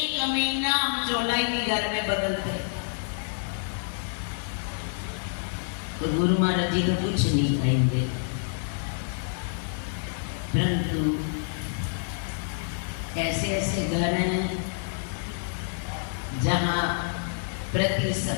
महीना हम चोला ही नहीं घर में बदलते, तो गुरु महाराज जी तो कुछ नहीं कहेंगे, परंतु ऐसे ऐसे घर हैं जहाँ प्रति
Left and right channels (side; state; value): right; silent; digital silence